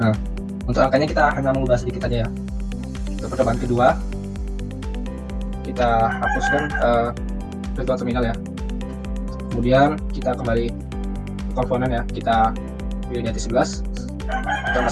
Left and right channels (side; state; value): both; identical; correlation 1.00